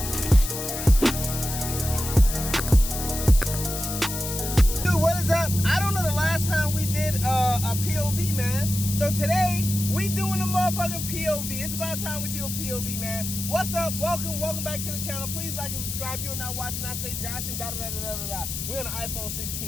A POV, man. So today we doing a motherfucking POV. It's about time we do a POV, man. What's up? Welcome back to the channel. Please like and subscribe. You're not watching. I say Josh and da da da da da da. We're on the iPhone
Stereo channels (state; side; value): noise; left; hiss, 5 dB below the sound